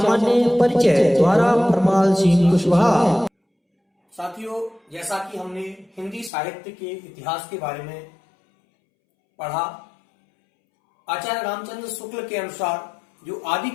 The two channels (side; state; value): right; drops out; at 6.3 s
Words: परिचय द्वारा परमाल सिंह कुशवाहा। साथियों, जैसा कि हमने हिंदी साहित्य के इतिहास के बारे में पढ़ा, आचार्य रामचंद्र शुक्ल के अनुसार जो